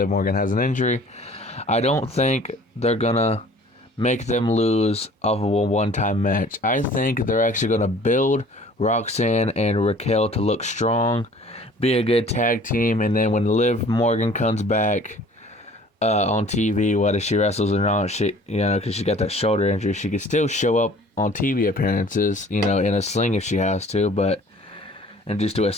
Morgan has an injury, I don't think they're going to make them lose off of a one-time match. I think they're actually going to build Roxanne and Raquel to look strong, be a good tag team, and then when Liv Morgan comes back on TV, whether she wrestles or not, because she got that shoulder injury, she could still show up on TV appearances, in a sling if she has to, and just do a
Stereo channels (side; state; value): both; normal; correlation 0.50